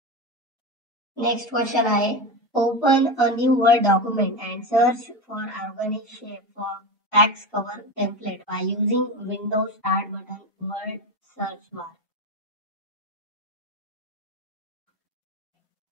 नेक्स्ट क्वेश्चन आहे, open a new word document and search for organic shape for tax cover template by using Windows start button Word search bar.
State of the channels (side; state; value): both; normal; correlation 0.20